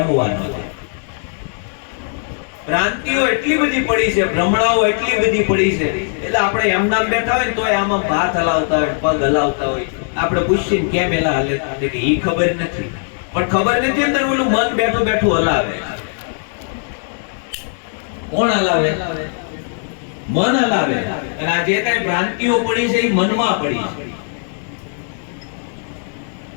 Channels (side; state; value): right; silent; 67 dB below the other